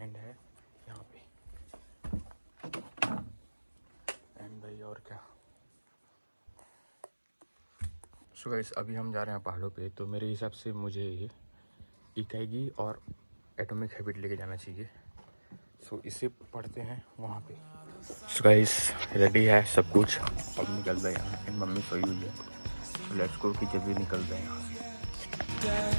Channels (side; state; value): both; inverted; correlation -1.00